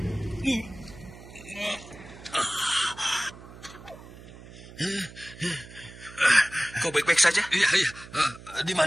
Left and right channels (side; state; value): right; noise; hum, 17 dB below the sound